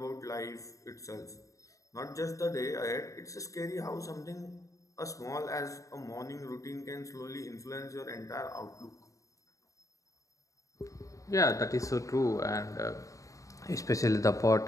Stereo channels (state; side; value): late; right; 0.16 ms